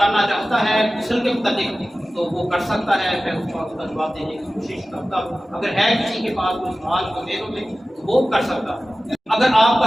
چاہتا ہے غسل کے متعلق تو وہ کر سکتا ہے، میں اس کا جواب دینے کی کوشش کرتا ہوں۔ اگر ہے کسی کے پاس کوئی سوال تو میروں میں تو وہ کر سکتا ہے۔ اگر آپ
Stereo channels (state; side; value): normal; both; correlation 0.96